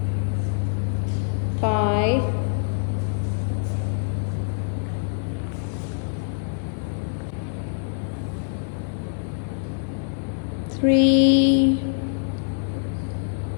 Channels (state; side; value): silent; right; 62 dB below the other